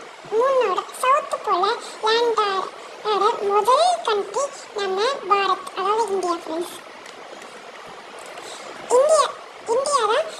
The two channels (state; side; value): identical; both; correlation 1.00